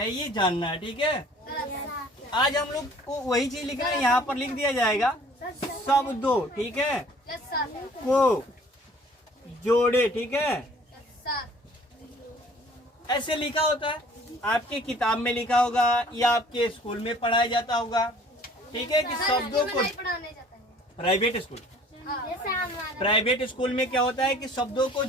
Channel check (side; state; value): both; normal; correlation 0.53